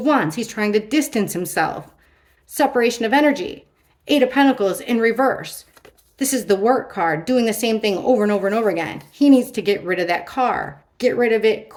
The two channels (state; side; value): identical; both; correlation 1.00